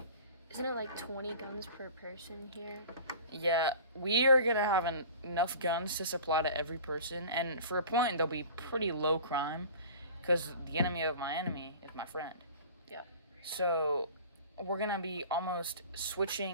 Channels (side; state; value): both; inverted; correlation -0.41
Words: isn't it like 20 guns per person here? yeah, we are going to have enough guns to supply to every person. And for a point, they'll be pretty low crime because the enemy of my enemy is my friend. Yeah. So we're going to be almost